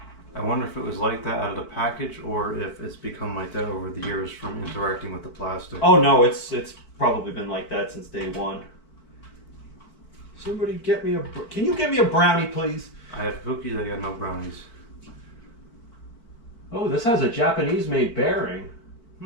I wonder if it was like that out of the package, or if it's become like that over the years from interacting with the plastic. Oh no, it's probably been like that since day one. Somebody get me can you get me a brownie, please? I have cookies, I got no brownies. Oh, this has a Japanese-made bearing.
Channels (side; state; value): right; late; 4.4 ms